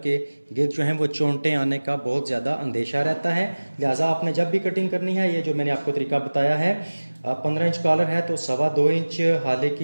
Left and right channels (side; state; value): both; inverted; correlation -1.00